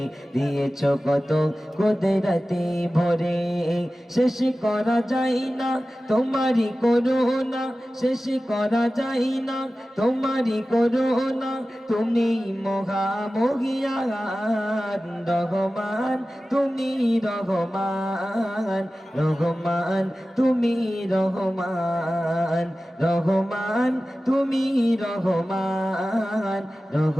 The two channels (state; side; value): normal; both; correlation 0.95